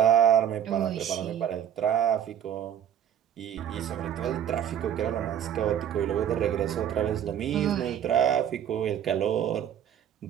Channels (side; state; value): left; quieter; 9.8 dB